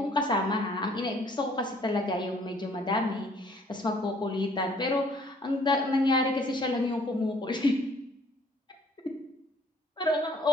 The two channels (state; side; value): normal; both; correlation 0.60